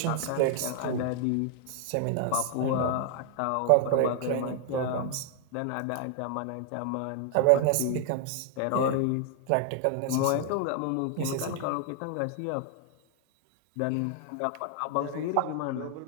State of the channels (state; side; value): different; both; correlation 0.00